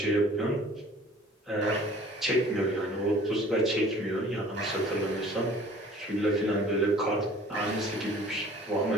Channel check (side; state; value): both; normal; correlation 0.50